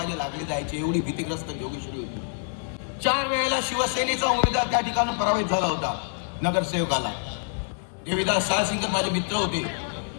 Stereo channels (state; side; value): silent; right; 60 dB below the other